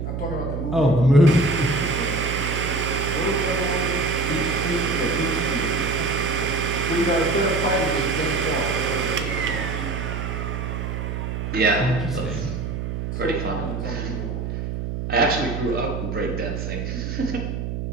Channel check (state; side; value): noise; right; hum, 4 dB below the sound